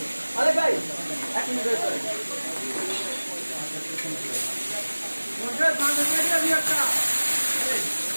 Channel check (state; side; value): inverted; both; correlation -1.00